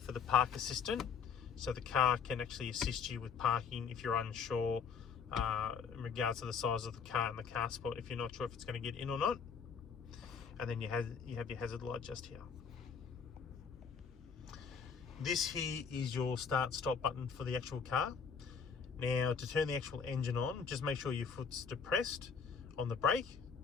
the park assistant, so the car can actually assist you with parking if you're unsure in regards to the size of the car and the car spot, if you're not sure if it's going to get in or not. And then you have your hazard light just here. This here is your start stop button for the actual car. Now, to turn the actual engine on, just make sure your foot's depressed on the brake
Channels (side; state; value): right; quieter; 6.2 dB